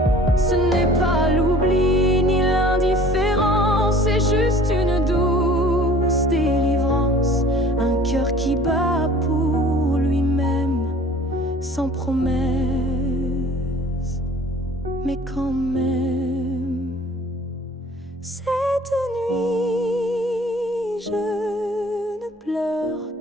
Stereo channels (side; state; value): both; normal; correlation 0.49